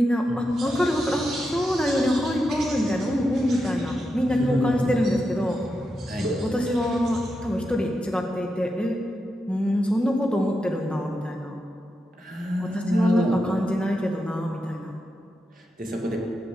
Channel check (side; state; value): both; normal; correlation 0.87